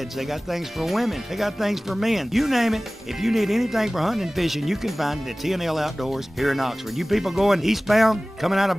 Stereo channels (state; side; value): normal; both; correlation 0.98